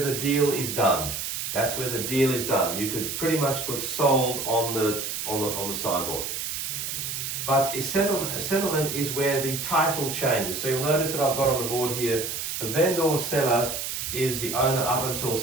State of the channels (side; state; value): right; noise; hiss, 4 dB below the sound